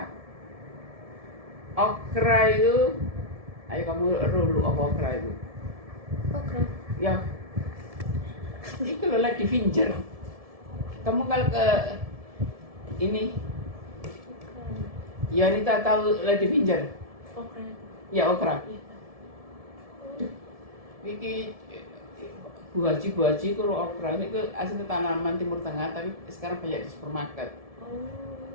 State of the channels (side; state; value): left; late; 1.7 ms